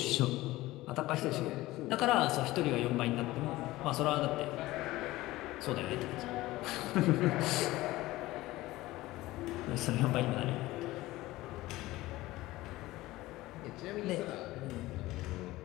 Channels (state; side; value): quieter; right; 18.0 dB